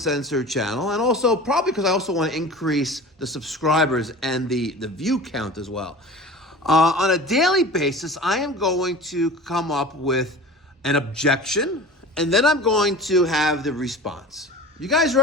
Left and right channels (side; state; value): both; normal; correlation 0.37